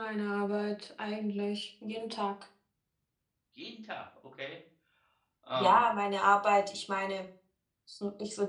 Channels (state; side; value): identical; both; correlation 1.00